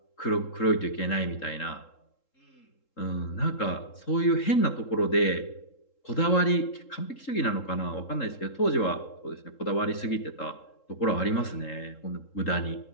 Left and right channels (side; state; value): right; late; 3.7 ms